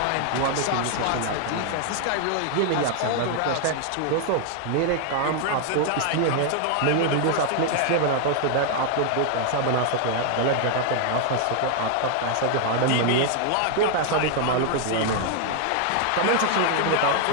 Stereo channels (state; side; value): different; both; correlation 0.00